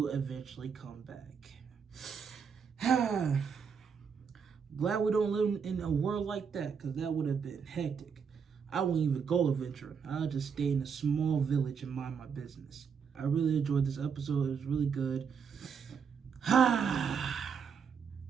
eventually come back. Glad we don't live in a world like that, because that would have been hectic. I wouldn't even go adventuring. I'll just stay in a small village and mind my business. I really enjoyed this episode. It was really good.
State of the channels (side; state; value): left; quieter; 6.5 dB